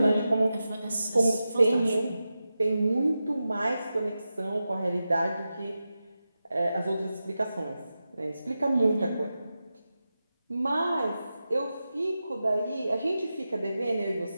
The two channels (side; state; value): both; inverted; correlation -0.92